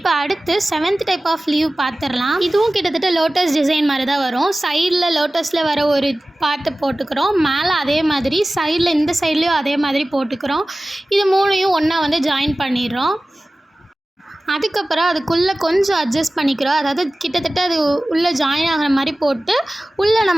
அடுத்து 7th டைப் ஆஃப் லீவ் பார்த்துடலாம். இதுவும் கிட்டத்தட்ட லோட்டஸ் டிசைன் மாதிரி தான் வரும். சைடில் லோட்டஸில் வர ஒரு பார்ட்டு போட்டுக்கிறோம், மேலே அதே மாதிரி சைடில் இந்த சைட்லேயும் அதே மாதிரி போட்டுக்கிறோம். இது மூணையும் ஒன்றா வந்து ஜாயின் பண்ணிடுறோம். அதுக்கப்புறம் அதுக்குள்ளே கொஞ்சம் அட்ஜஸ்ட் பண்ணிக்கிறோம், அதாவது கிட்டத்தட்ட அது உள்ளே ஜாயின் ஆகிற மாதிரி போட்டு உள்ளே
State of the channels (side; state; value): both; normal; correlation 0.97